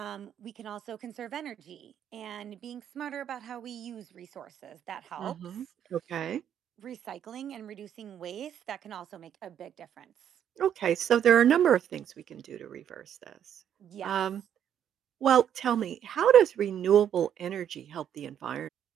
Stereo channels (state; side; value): quieter; left; 9.5 dB